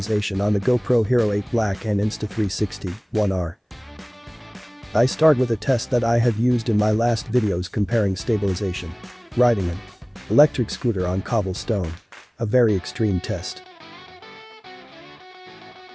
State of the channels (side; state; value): both; identical; correlation 1.00